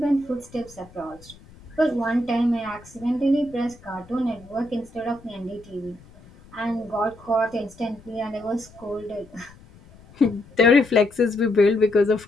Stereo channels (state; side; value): noise; left; rumble, 23 dB below the sound